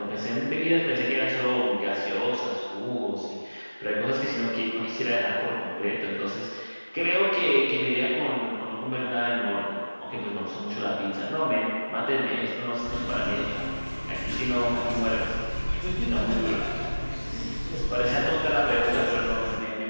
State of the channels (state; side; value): inverted; both; correlation -1.00